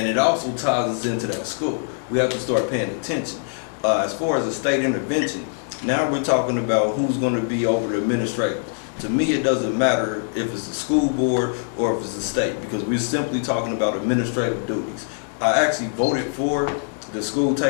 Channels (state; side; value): silent; right; digital silence